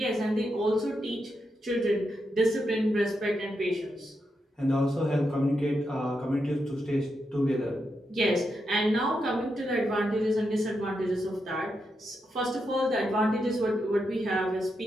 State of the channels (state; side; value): normal; both; correlation 0.84